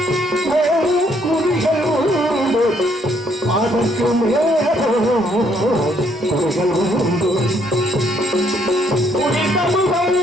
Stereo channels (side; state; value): both; normal; correlation 0.69